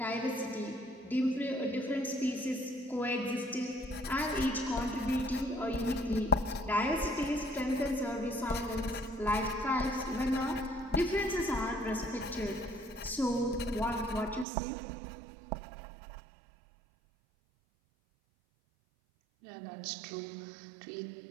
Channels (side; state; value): left; drops out; at 14.5 s